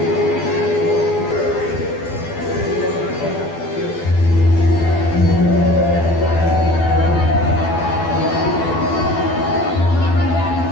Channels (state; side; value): late; right; 12 ms